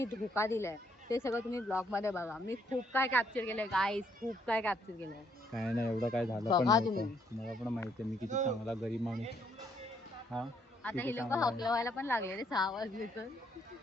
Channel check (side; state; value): both; normal; correlation 0.70